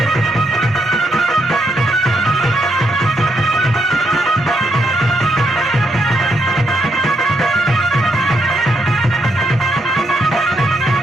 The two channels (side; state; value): both; normal; correlation 0.78